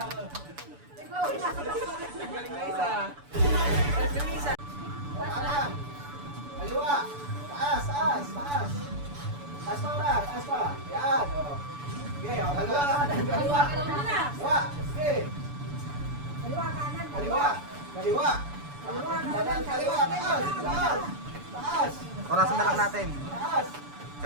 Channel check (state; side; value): late; left; 6.9 ms